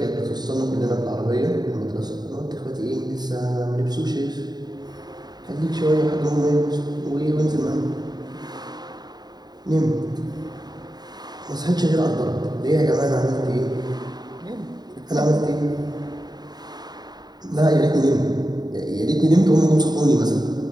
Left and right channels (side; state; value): left; late; 0.20 ms